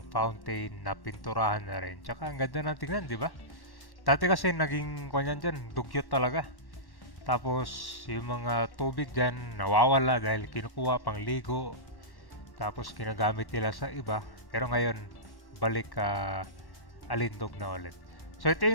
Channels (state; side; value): late; right; 1.1 ms